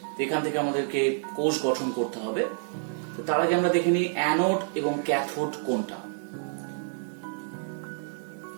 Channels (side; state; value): left; silent; digital silence